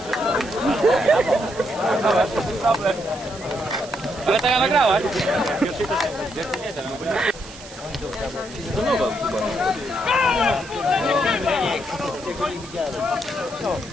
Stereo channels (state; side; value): noise; right; hiss, 17 dB below the sound